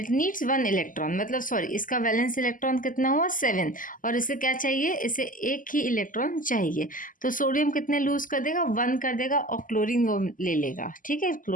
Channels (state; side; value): late; right; 0.39 ms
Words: नीड्स 1 इलेक्ट्रॉन, मतलब सॉरी इसका वैलेंस इलेक्ट्रॉन कितना हुआ 7 और इसे क्या चाहिए, इसे एक ही इलेक्ट्रॉन चाहिए। तो सोडियम कितने लूज कर देगा 1 कर देगा और क्लोरीन वो ले लेगा, ठीक है,